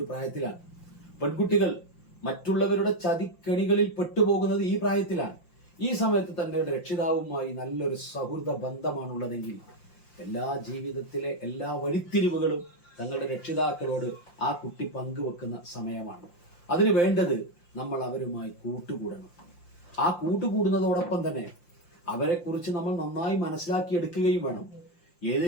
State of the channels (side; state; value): right; late; 5.8 ms